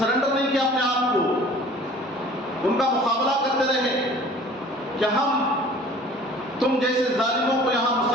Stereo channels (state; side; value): normal; both; correlation 0.48